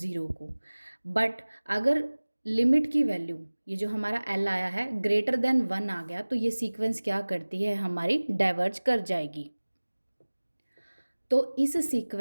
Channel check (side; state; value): both; inverted; correlation -1.00